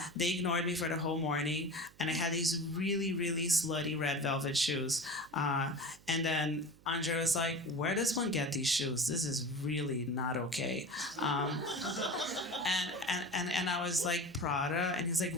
They ignored me for the whole morning, and I had these really, really slutty red velvet shoes. And then Andre was like, "Where does one get these shoes? This is really not okay." And I was like, "Prada," and he's like,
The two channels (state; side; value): noise; right; hum, 26 dB below the sound